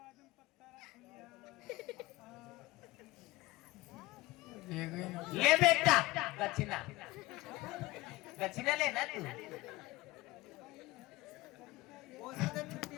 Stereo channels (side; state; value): right; quieter; 19.9 dB